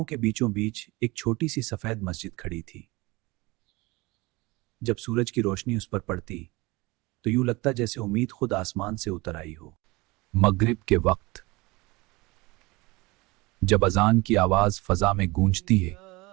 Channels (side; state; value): left; quieter; 23.2 dB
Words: के बीचों बीच एक छोटी सी सफेद मस्जिद खड़ी थी। जब सूरज की रोशनी उस पर पड़ती तो यूं लगता जैसे उम्मीद खुद आसमान से उतर आई हो। मगरिब के वक्त जब अजान की आवाज फजा में गूंजती है